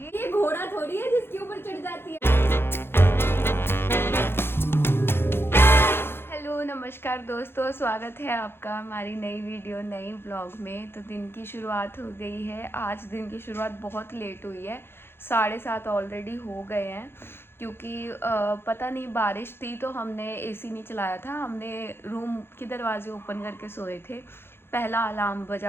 ये घोड़ा थोड़ी है जिसके ऊपर चढ़ जाती है। हेलो नमस्कार दोस्तों, स्वागत है आपका हमारी नई वीडियो नई ब्लॉग में। तो दिन की शुरुआत हो गई है। आज दिन की शुरुआत बहुत लेट हुई है, 7:30 ऑलरेडी हो गए हैं। क्योंकि पता नहीं बारिश थी तो हमने एसी नहीं चलाया था, हमने रूम के दरवाजे ओपन करके सोए थे। पहला अलार्म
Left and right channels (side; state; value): right; late; 0.11 ms